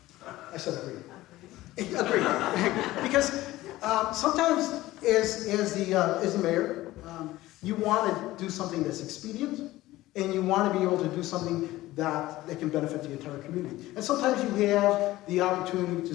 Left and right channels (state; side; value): quieter; right; 17.0 dB